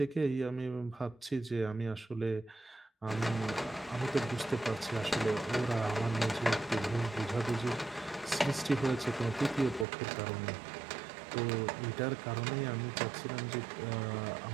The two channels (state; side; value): drops out; left; at 9.9 s